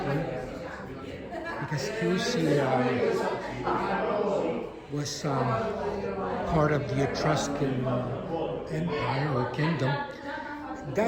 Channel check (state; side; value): identical; both; correlation 1.00